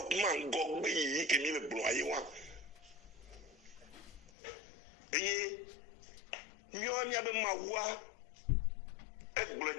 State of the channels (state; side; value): drops out; right; at 4.3 s